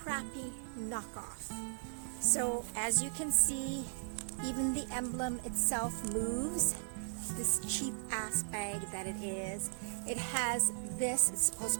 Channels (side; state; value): left; silent; digital silence